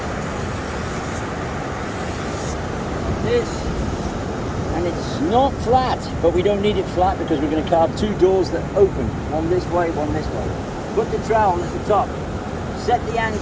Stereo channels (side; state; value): both; identical; correlation 1.00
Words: This, and it's not flat, but we don't need it flat because we're going to carve two doors that open, one this way, one this way. Put the trowel at the top, set the